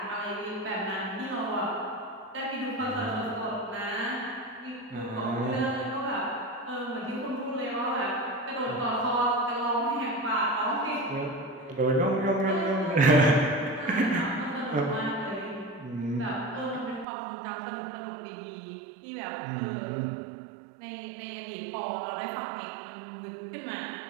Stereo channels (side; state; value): left; drops out; at 17.1 s